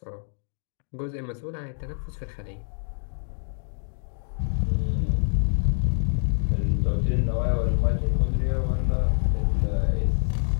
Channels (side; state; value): right; silent; digital silence